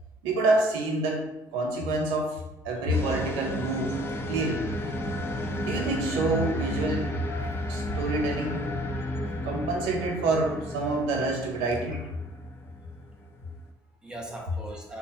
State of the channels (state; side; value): normal; both; correlation 0.55